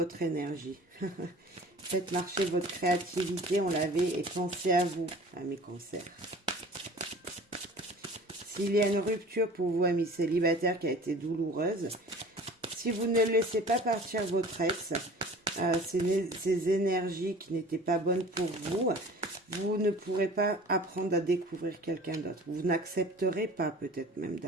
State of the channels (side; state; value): both; normal; correlation 0.44